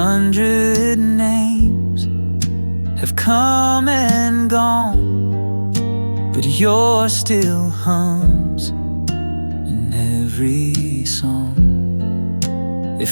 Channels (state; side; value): inverted; both; correlation -1.00